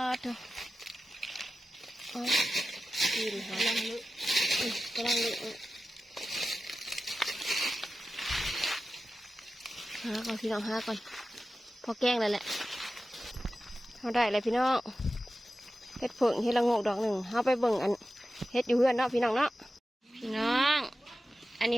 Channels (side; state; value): both; normal; correlation 0.94